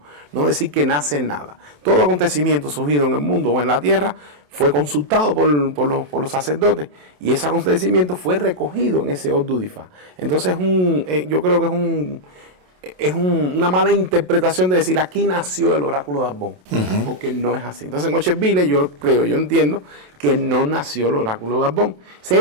no decir que nace nada. Todo acontecimiento surgido en el mundo o en la tierra fue consultado por los sacerdotes, y ese acontecimiento fue recogido en ese Ordu de Ifá. Entonces yo creo que es una mala interpretación de decir aquí nació el oráculo de Abon, porque no es así. Entonces en Ocheville yo entiendo que no nació el oráculo de Abon.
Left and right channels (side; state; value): left; late; 27 ms